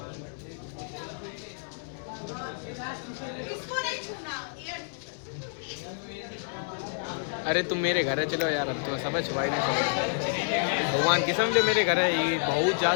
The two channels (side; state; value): right; silent; digital silence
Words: इसको नहीं छूना, एयर अरे तुम मेरे घर है, चलो यार अब तुम्हें समझ छुपाई नहीं सकते। भगवान की समझे मेरे घर है, ये बहुत